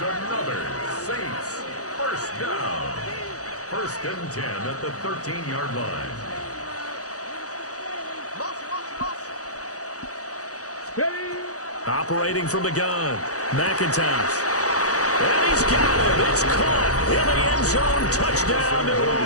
another Saints first down. 1st and 10 at the 13-yard line. Operating from the gun, McIntosh. And he's got it. It's caught in the end zone. Touchdown, New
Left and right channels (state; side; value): late; right; 0.66 ms